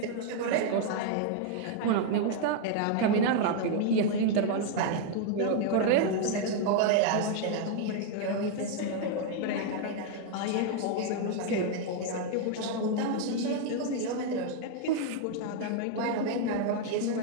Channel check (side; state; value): both; different; correlation 0.00